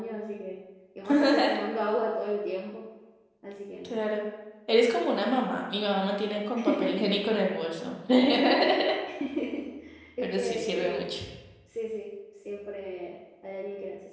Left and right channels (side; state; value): both; identical; correlation 1.00